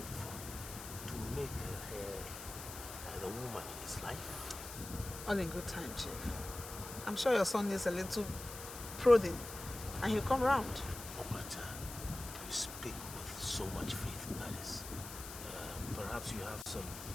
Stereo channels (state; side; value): noise; left; hiss, 10 dB below the sound